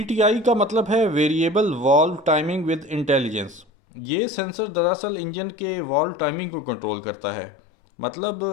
ٹی آئی کا مطلب ہے variable valve timing with intelligence. یہ سینسر دراصل انجن کے والو ٹائمنگ کو کنٹرول کرتا ہے، مطلب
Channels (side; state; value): right; drops out; at 3.7 s